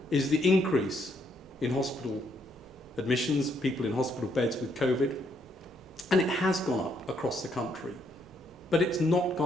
is the increase in hospital admissions, people in hospital beds with COVID, and it has gone up across the country, but it's not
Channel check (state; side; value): normal; both; correlation 0.72